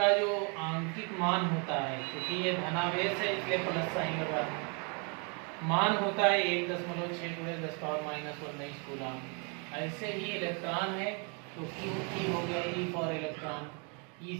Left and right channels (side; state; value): left; quieter; 35.3 dB